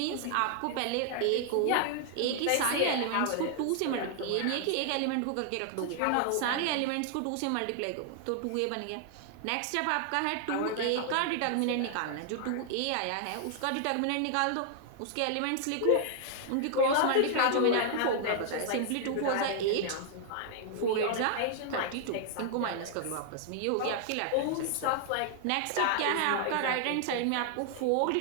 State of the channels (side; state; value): both; different; correlation 0.00